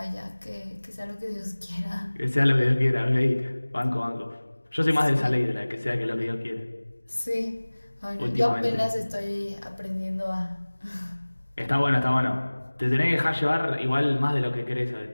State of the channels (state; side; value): inverted; both; correlation -1.00